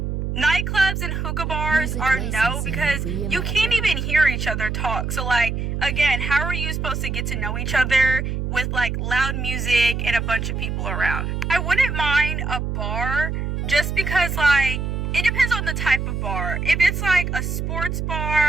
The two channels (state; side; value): noise; right; hum, 2 dB below the sound